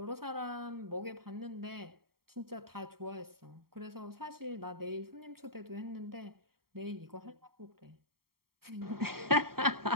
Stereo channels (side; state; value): left; late; 0.94 ms